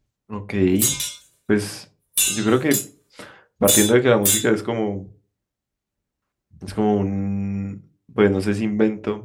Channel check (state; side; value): identical; both; correlation 1.00